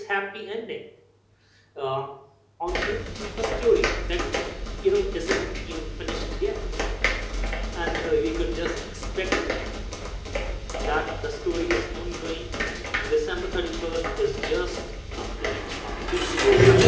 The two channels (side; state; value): both; identical; correlation 1.00